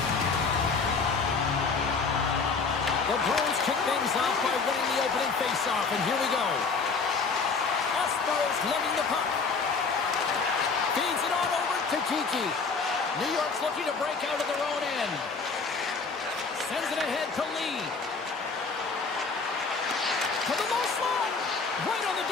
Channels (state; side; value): quieter; right; 4.7 dB